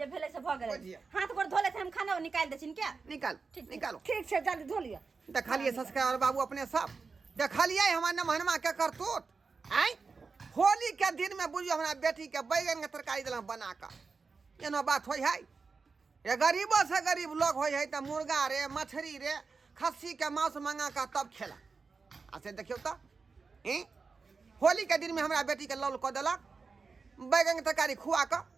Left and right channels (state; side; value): quieter; left; 4.6 dB